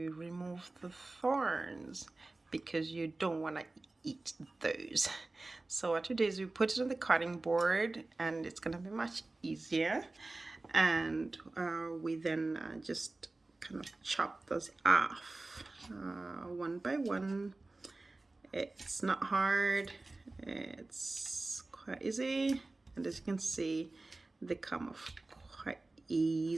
remove the thorns because you don't want to eat those. So what we do is we put it on the cutting board and it's going to be much easier. And we then just kind of chop those off one by one. It's not hard, it's quite easy, and as you can see, they come off quite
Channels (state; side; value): quieter; left; 3.1 dB